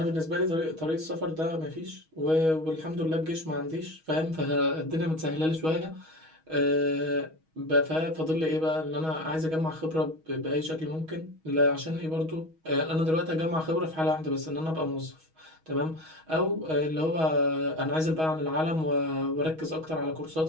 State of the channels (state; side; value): late; left; 6.3 ms